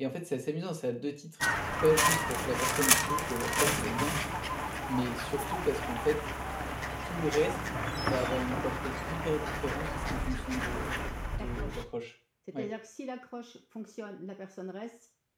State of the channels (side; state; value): both; identical; correlation 1.00